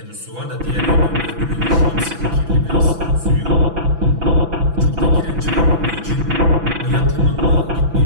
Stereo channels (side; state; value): left; late; 6.0 ms